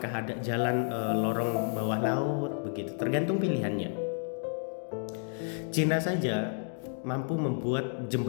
ada jalan lorong bawah laut, begitu. Tergantung pilihannya. Cina saja mampu membuat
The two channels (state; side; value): silent; right; digital silence